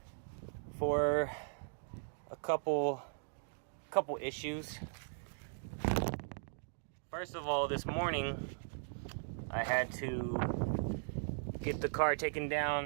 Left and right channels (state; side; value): silent; left; digital silence